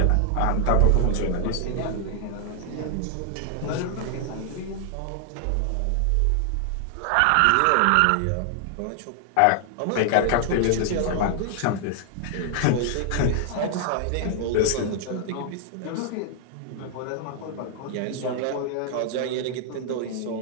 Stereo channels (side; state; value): both; different; correlation 0.00